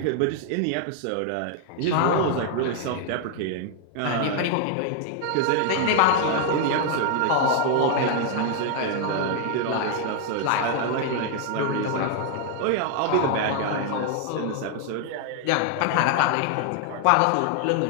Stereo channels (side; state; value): both; different; correlation 0.00